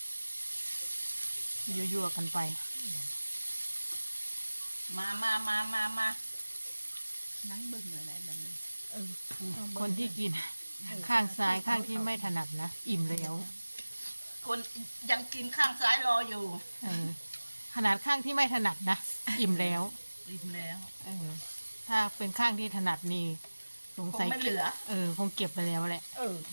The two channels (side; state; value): both; inverted; correlation -1.00